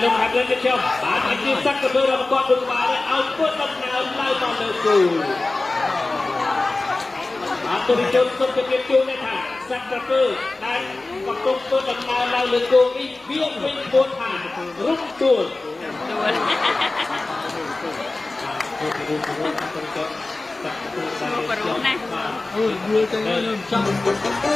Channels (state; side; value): quieter; right; 3.2 dB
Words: លោកហាត់lênចុះបាទអាជីពសក្តិភាពរបស់គាត់ដូចបានឲ្យពុតដំណើរឡើងមកលើគូបាទទូរទស្សន៍សុខភាពជួនថាសក្តិភាពដែលកំពុងពុតដំណើរឡើងលើគូនេះវាវិញពោលថារុំទួលបរុណាអូយយល់ទៅខ្ញុំចង់